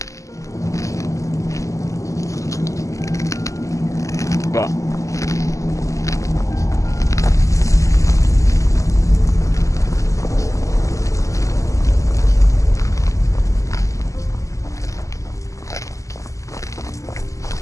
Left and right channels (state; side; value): late; right; 0.16 ms